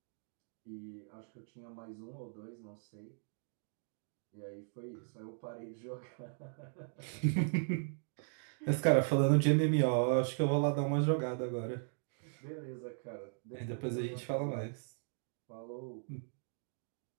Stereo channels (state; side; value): silent; left; digital silence